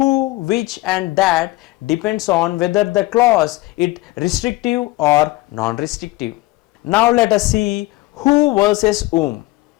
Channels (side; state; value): right; quieter; 19.8 dB